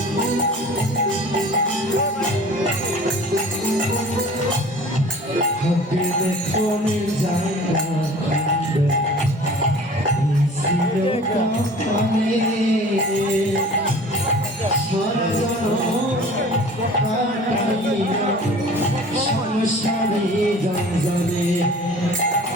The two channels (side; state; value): both; normal; correlation 0.45